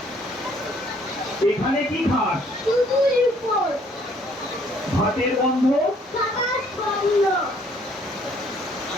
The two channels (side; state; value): both; normal; correlation 0.62